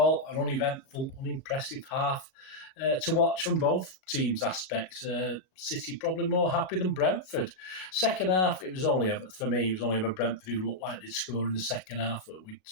an uneventful, unimpressive half to watch from both teams' aspects. City probably more happy than Brentford. Second half, it was only ever Brentford who looked like they'd score in the second half, but we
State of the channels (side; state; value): right; late; 37 ms